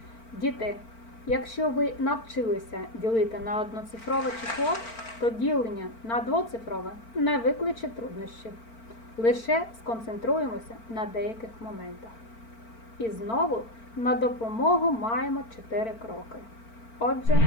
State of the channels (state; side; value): late; right; 4.4 ms